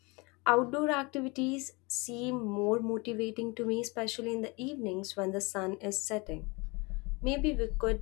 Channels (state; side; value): quieter; right; 27.1 dB